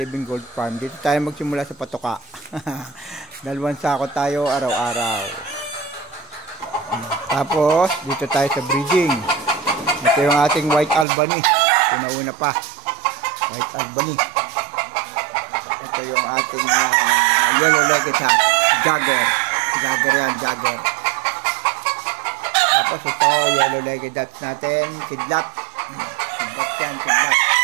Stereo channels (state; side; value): drops out; left; at 11.1 s